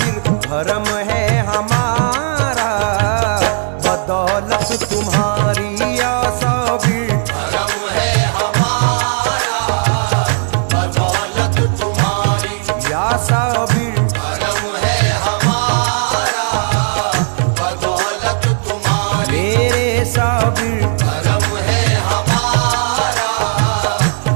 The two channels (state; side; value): silent; left; 69 dB below the other